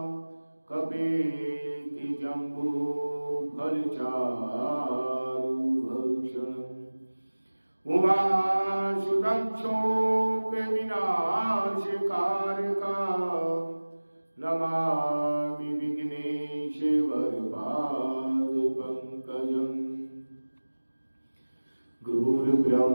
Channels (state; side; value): inverted; both; correlation -1.00